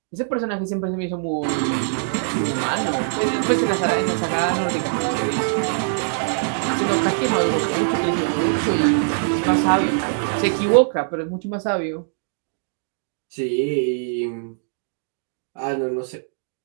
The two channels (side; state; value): left; silent; digital silence